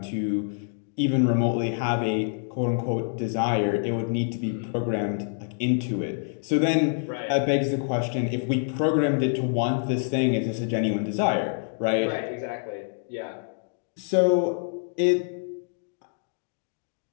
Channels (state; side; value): silent; right; digital silence